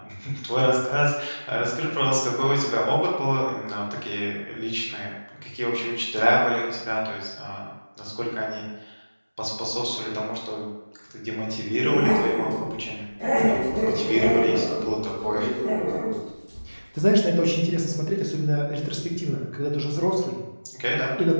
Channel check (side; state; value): both; inverted; correlation -1.00